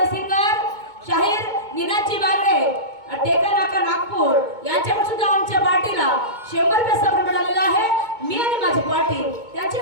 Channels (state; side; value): late; left; 2.2 ms